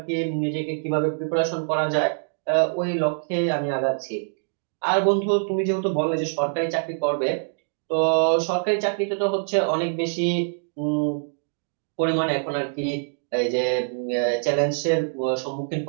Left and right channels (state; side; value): silent; left; digital silence